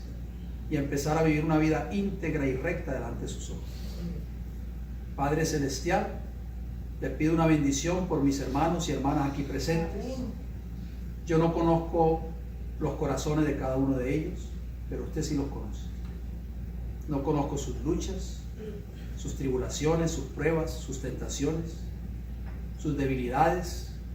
y a empezar a vivir una vida íntegra y recta delante de sus ojos. Padre Celestial, le pido una bendición por mis hermanos y hermanas aquí presentes. Yo no conozco los corazones de cada uno de ellos, pero usted sí los conoce. No conozco sus luchas, sus tribulaciones, sus pruebas, sus tentaciones, sus debilidades,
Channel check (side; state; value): both; identical; correlation 1.00